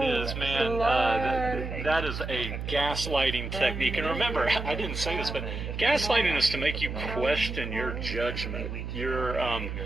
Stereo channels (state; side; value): noise; right; hum, 6 dB below the sound